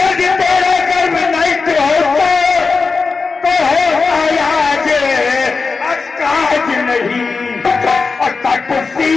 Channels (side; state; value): right; quieter; 4.5 dB